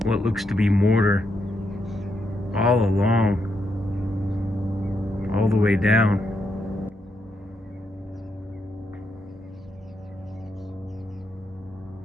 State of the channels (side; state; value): both; normal; correlation 0.80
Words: what looks to be mortar all along, all the way down.